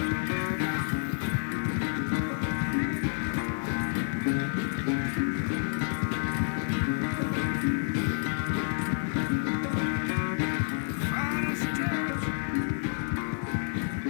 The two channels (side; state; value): right; silent; 58 dB below the other